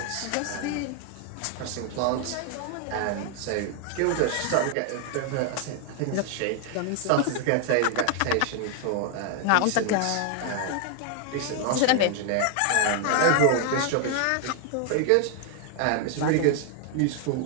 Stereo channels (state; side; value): different; both; correlation 0.00